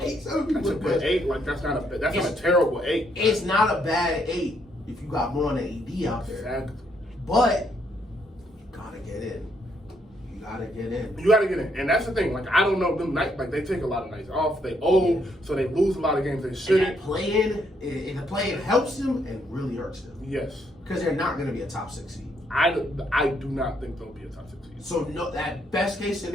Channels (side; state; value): both; normal; correlation 0.73